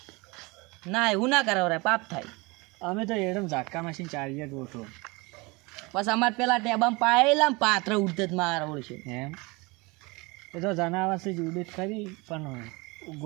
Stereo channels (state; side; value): quieter; left; 25.8 dB